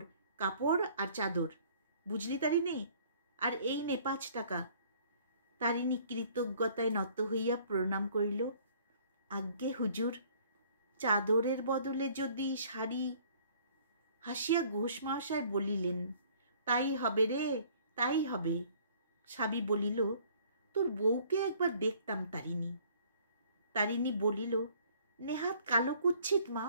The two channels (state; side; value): inverted; both; correlation -0.57